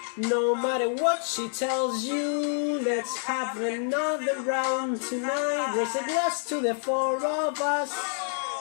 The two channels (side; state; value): right; silent; 60 dB below the other